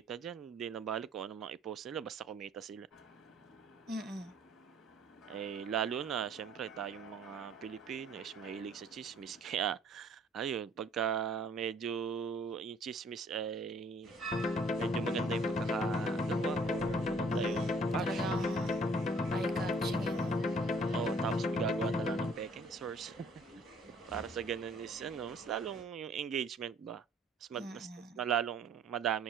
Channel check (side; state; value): both; normal; correlation 0.57